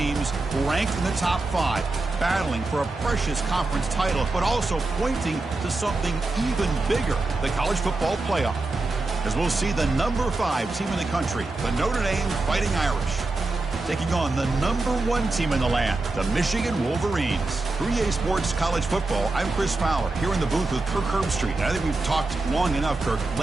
ranked in the top 5, battling for a precious conference title, but also pointing to something even bigger, the college football playoff. As we'll see the number 5 team in the country, the Notre Dame Fighting Irish, taking on the number 1 team in the land, the Michigan Wolverines. For EA Sports College Football, I'm Chris Fowler, here in the booth with Kirk Herbstreit. And I think we've talked long enough, Kirk.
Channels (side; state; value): left; quieter; 3.3 dB